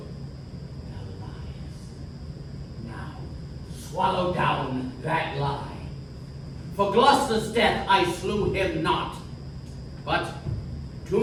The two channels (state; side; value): identical; both; correlation 1.00